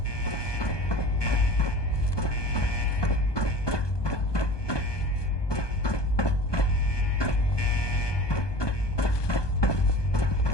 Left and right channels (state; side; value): late; right; 1.2 ms